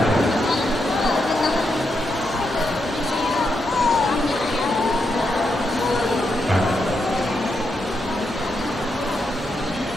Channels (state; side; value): normal; both; correlation 0.83